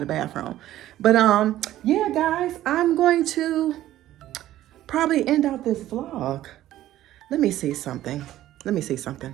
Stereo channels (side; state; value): left; quieter; 13.8 dB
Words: the bathroom. But yeah, guys, I'm going to probably end out this vlog. Let me see something. Let me see something.